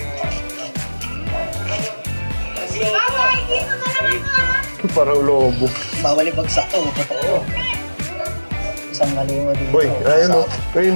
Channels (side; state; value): both; inverted; correlation -1.00